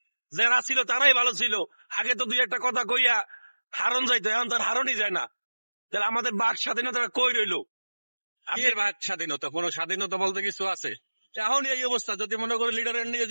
যারা ছিল তারাই ভালো ছিল। আগে তো 2 একটা কথা কইয়া হারন যাইতো, এখন তার হারনই যায় না। তাহলে আমাদের বাক স্বাধীনতাটা কই রইলো? এর ভাগ স্বাধীনতা, কোন স্বাধীনতা বলতে কিছু আছে? এখন এই অবস্থা, যদি মনে করি লিডারের নিয়ে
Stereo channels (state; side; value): inverted; both; correlation -1.00